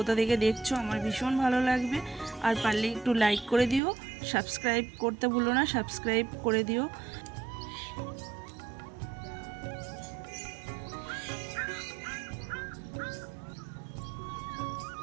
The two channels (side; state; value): left; drops out; at 3.8 s